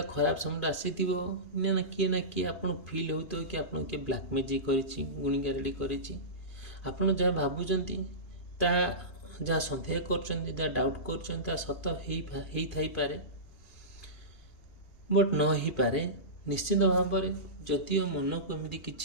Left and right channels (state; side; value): late; right; 2.5 ms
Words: ଖରାପ ସମୟଟା ଆସିଥିବ, ନା କିଏ ଆପଣ ଫିଲ୍ ହେଉଥିବ କି ଆପଣ କିଏ ବ୍ଲାକ୍ ମ୍ୟାଜିକ୍ କରିଛି, ଗୁଣିଗାରେଡ଼ି କରିଛି। ଆପଣ ଯାହା ଭାବୁଛନ୍ତି, ତାହା ଯାହା ସନ୍ଦେହ କରୁଛନ୍ତି, ଯାହା ଡାଉଟ୍ କରୁଛନ୍ତି, ତାହା ସତ ହେଇଥାଇପାରେ, ବଟ୍ ନ ହେଇପାରେ। ନିଶ୍ଚିତ ଭାବରେ ଯଦିଓ ମନକୁ ଏମିତି